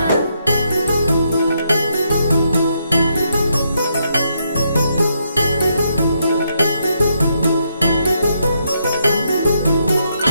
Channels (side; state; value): both; inverted; correlation -0.78